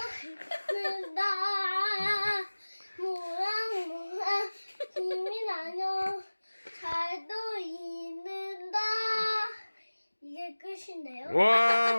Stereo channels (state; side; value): inverted; both; correlation -1.00